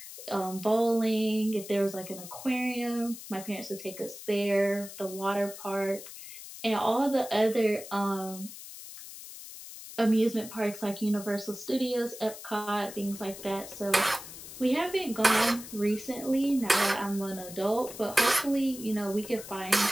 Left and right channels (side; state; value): left; noise; hiss, 13 dB below the sound